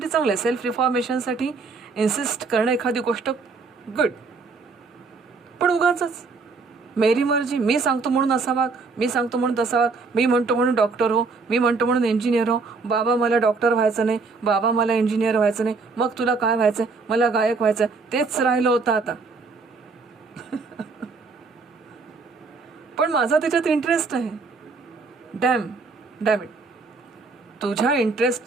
चांगलं आहे. सेल्फ रिफॉर्मेशनसाठी इन्सिस्ट करणं एखादी गोष्ट गुड. पण उगाचच मेरी मर्जी, मी सांगतो म्हणून असा वाग, मी सांगतो म्हणून तसा वाग, मी म्हणतो म्हणून डॉक्टर हो, मी म्हणतो म्हणून इंजिनियर हो. बाबा मला डॉक्टर व्हायचं नाही, बाबा मला इंजिनियर व्हायचं नाही. मग तुला काय व्हायचं? मला गायक व्हायचं. तेच राहिलं होतं आता. पण माझा त्याच्यात इंटरेस्ट आहे. Dam it. तुझ्या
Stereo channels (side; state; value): left; quieter; 4.3 dB